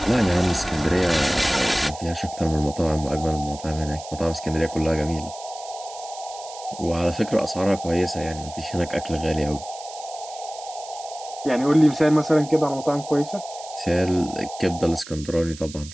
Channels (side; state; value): right; noise; hiss, 15 dB below the sound